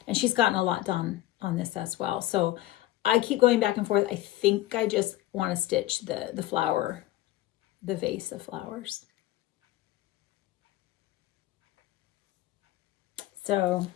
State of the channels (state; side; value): quieter; right; 16.1 dB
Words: And she's gotten a lot done on this as well. So I keep going back and forth. I think I just want to stitch the flower, the vase of flowers. So